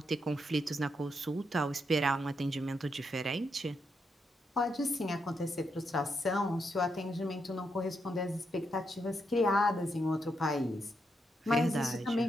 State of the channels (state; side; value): normal; both; correlation 0.81